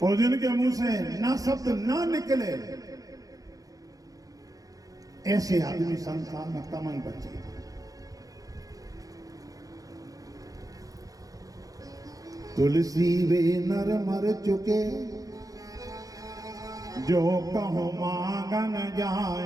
और जिनके मुंह से ना शब्द ना निकले, ऐसे आदमी संसार में कमन बचे। तुलसी वे नर मर चुके, जो कहो मांगन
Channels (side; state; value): left; late; 0.17 ms